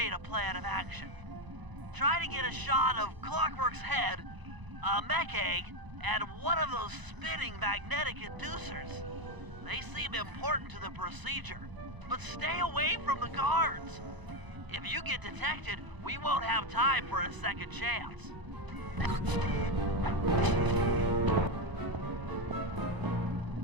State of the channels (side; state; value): left; late; 1.0 ms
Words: a plan of action. Try to get a shot of Clockwerk's head, a mech egg, and one of those spinning magnetic inducers. They seem important to the procedure, but stay away from the guards. If you get detected, we won't have time for a second chance.